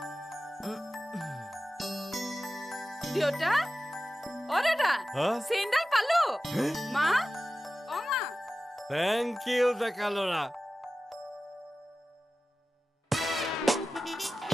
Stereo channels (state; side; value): normal; both; correlation 0.95